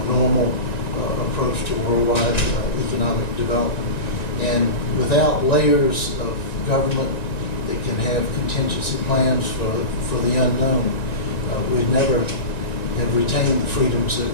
normal approach to worldwide economic development. And without layers of government that can have contingency plans for the unknown, we'd never have retained the freedoms that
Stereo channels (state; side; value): late; right; 1.9 ms